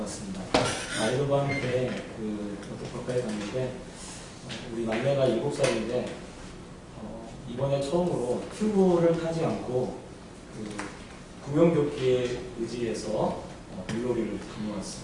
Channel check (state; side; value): identical; both; correlation 1.00